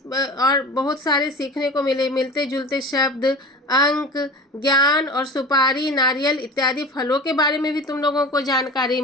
और बहुत सारे सीखने को मिले, मिलते जुलते शब्द, अंक, ज्ञान और सुपारी, नारियल इत्यादि फलों के बारे में भी तुम लोगों को जानकारी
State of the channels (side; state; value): both; normal; correlation 0.35